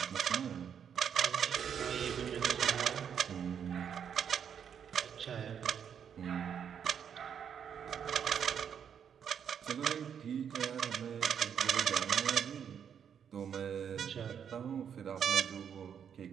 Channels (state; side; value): quieter; left; 8.0 dB